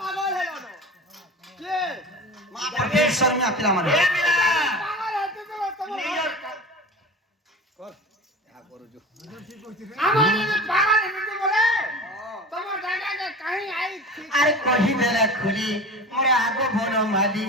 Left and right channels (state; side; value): normal; both; correlation 0.33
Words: হলো না কে মা পরমেশ্বর মে আপিলা মানে এ মিলা পাগল হতে তো তোমার নিজের কর যা করো जो আমার যদি পাগল হতে বলে তোমার জায়গাকে কাহি আই আরে কহি দেলা খুলি মোরে আগো বন মালি